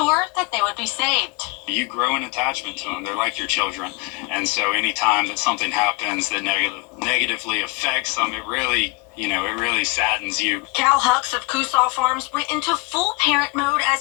that they would be saved. You grow an attachment to them. They're like your children. And so anytime that something happens that negatively affects them, it really saddens you. Cal Hucks of Coosaw Farms went into full parent mode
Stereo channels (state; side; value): quieter; right; 27.3 dB